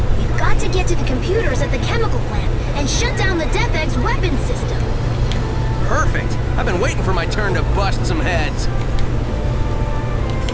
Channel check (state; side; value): identical; both; correlation 1.00